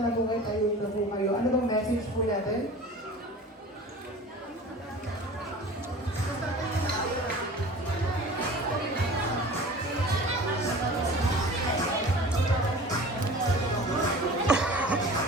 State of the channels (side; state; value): both; normal; correlation 0.40